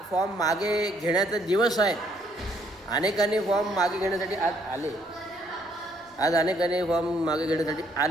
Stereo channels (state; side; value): normal; both; correlation 0.68